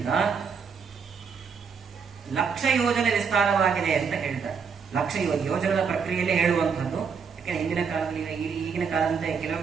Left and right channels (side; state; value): left; quieter; 6.1 dB